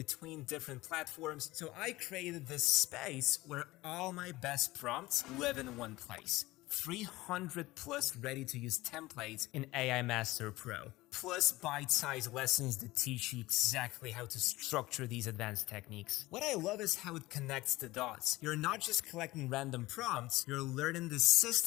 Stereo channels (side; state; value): right; quieter; 19.1 dB